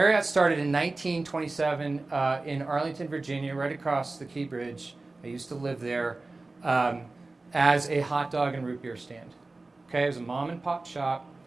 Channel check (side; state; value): left; quieter; 3.3 dB